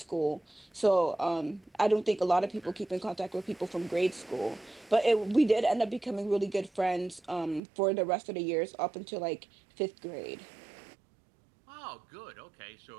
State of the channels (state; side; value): drops out; left; at 7.6 s